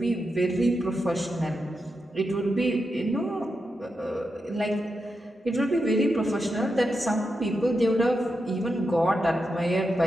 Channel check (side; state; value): both; normal; correlation 0.87